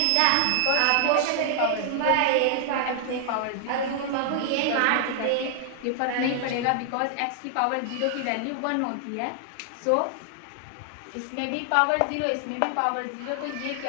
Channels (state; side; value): different; both; correlation 0.00